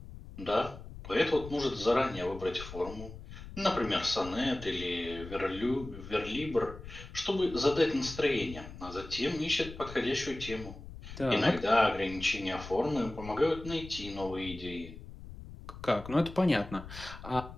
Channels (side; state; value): left; noise; rumble, 13 dB below the sound